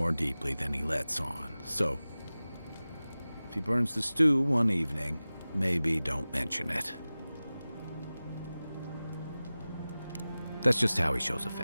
deeply than he lets on, so if he burns the stew one evening, maybe don't mention it. That's just how he shows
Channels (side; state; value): both; inverted; correlation -0.97